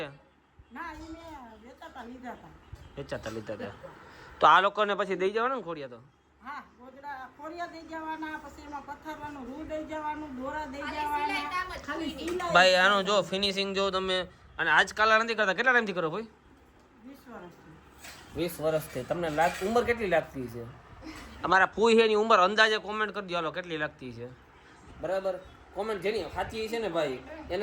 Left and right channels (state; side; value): identical; both; correlation 1.00